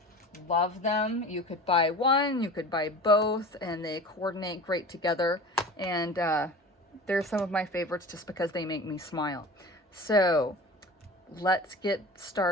Love them. You could buy one, you could buy both, and they coordinate great together. And they're some of my favorites just because they make me smile. So let's get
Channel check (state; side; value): normal; both; correlation 0.37